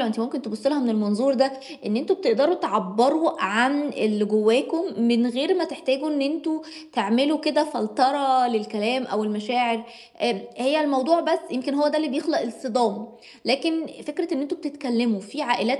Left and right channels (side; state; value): both; identical; correlation 1.00